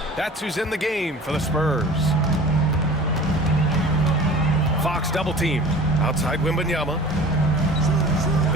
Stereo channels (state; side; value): normal; both; correlation 0.42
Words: That's who's in the game for the Spurs. Fox double team outside Wembanyama.